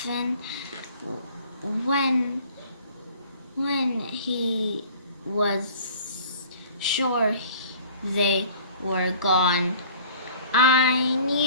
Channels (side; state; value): both; inverted; correlation -0.49